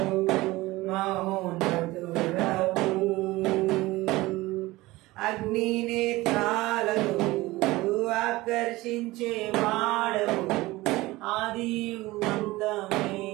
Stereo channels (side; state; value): left; quieter; 19.6 dB